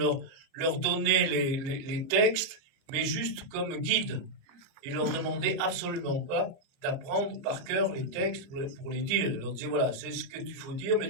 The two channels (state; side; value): late; left; 30 ms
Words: leur donner les textes, mais juste comme guide. Il leur demandait absolument pas d'apprendre par cœur les textes pour les dire. Il leur disait, voilà, c'est ce que tu faut dire, mais